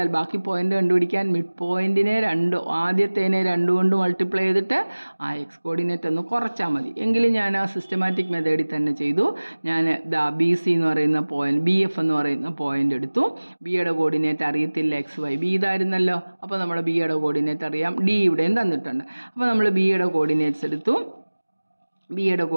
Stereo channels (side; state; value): both; inverted; correlation -1.00